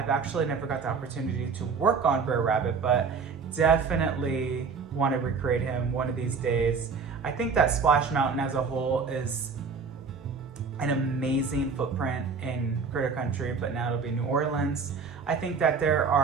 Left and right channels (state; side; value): quieter; left; 5.3 dB